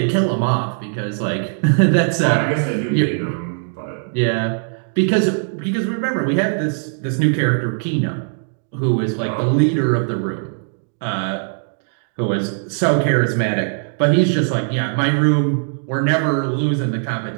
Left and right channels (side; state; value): left; silent; 66 dB below the other